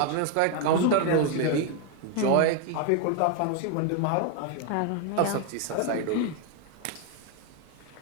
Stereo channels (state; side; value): different; both; correlation 0.01